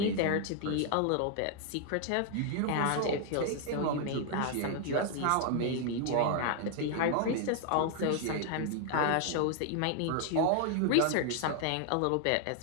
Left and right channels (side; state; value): both; different; correlation 0.00